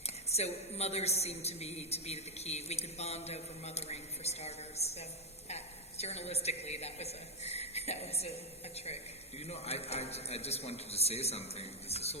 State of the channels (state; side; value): normal; both; correlation 0.03